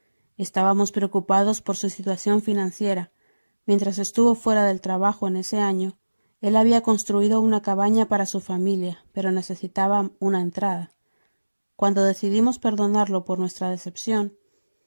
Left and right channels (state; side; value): inverted; both; correlation -1.00